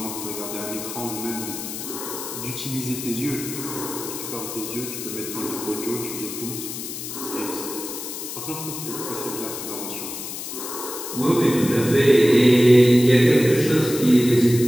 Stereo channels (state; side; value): noise; left; hiss, 8 dB below the sound